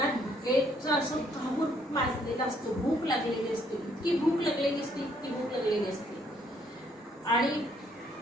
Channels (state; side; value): normal; both; correlation 0.68